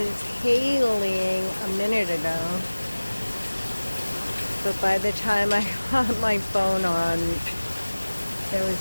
hailing a minute ago. But by the time I got my phone on, there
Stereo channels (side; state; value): both; inverted; correlation -1.00